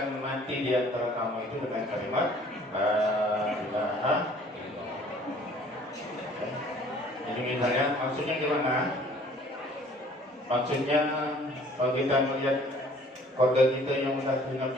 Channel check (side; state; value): both; normal; correlation 0.54